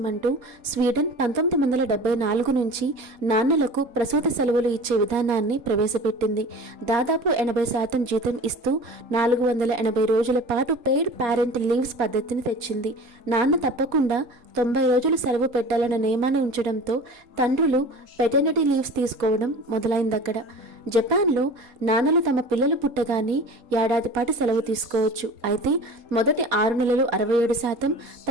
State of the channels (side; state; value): left; late; 4.2 ms